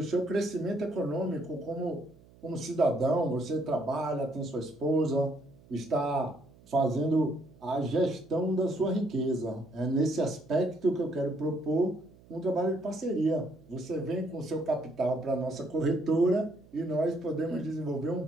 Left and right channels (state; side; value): noise; right; hum, 25 dB below the sound